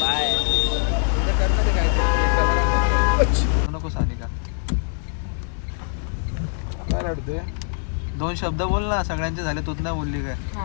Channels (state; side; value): silent; right; digital silence